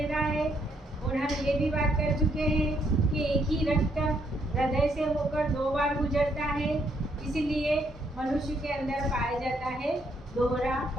रहा है। और हम ये भी बात कर चुके हैं कि एक ही रक्त हृदय से होकर 2 बार गुजरता है, इसलिए मनुष्य के अंदर पाया जाता है दोहरा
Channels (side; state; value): both; normal; correlation 0.72